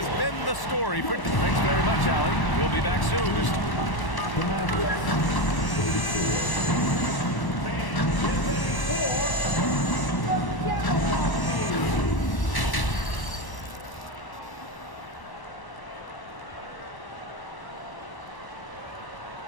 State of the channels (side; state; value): right; late; 1.1 ms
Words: been the story for... Thanks very much, Allie. We'll be back soon.